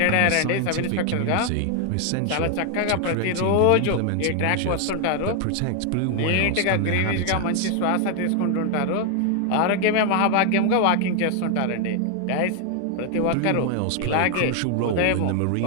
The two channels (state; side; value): different; both; correlation 0.01